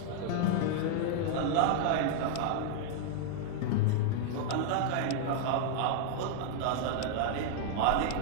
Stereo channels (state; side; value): different; both; correlation 0.00